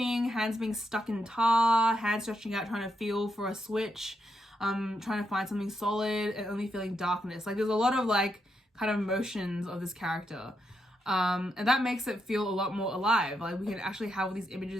hands being stuck in tar, hands stretching out, trying to feel for a switch, trying to find something solid, and only feeling darkness. Like there's a lot of like kind of motions of this character. And that makes it feel a lot more alive. Like we can actually have all these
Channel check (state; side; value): normal; both; correlation 0.82